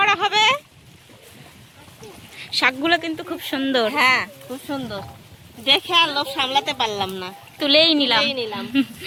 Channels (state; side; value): identical; both; correlation 1.00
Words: হবে। শাকগুলো কিন্তু খুব সুন্দর। হ্যাঁ, খুব সুন্দর। দেখে আর লোভ সামলাতে পারলাম না, তুলেই নিলাম।